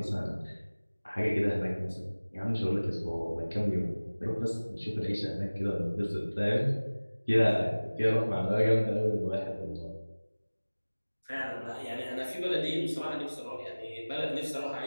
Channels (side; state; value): both; inverted; correlation -1.00